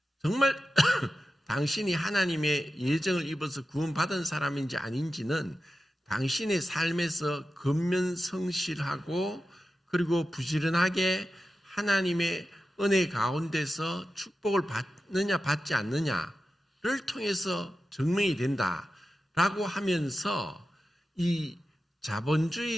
정말 당신이 하나님의 예정을 입어서 구원받은 사람인지 아닌지는 당신의 삶에서 근면성실하고 그리고 부지런하게 하나님의 은혜 가운데서 축복을 받느냐 받지 않느냐를 통해서 증명이 된다라고 하면서 이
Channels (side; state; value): both; normal; correlation 0.92